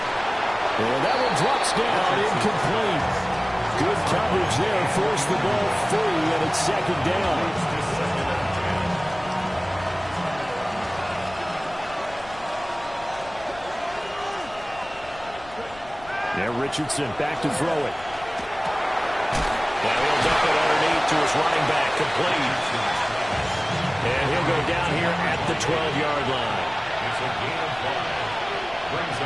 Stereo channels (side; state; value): left; noise; rumble, 20 dB below the sound